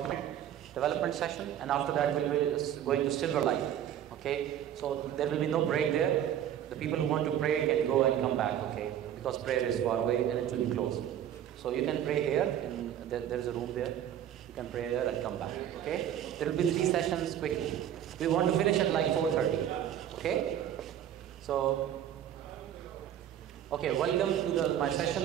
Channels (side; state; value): left; quieter; 10.5 dB